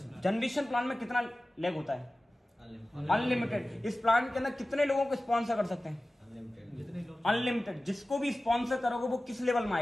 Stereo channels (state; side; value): normal; both; correlation 0.96